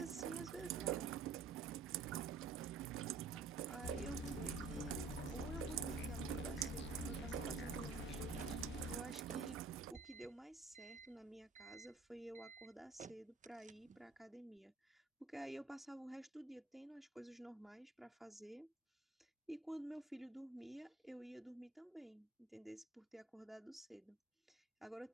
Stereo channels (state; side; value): quieter; left; 4.1 dB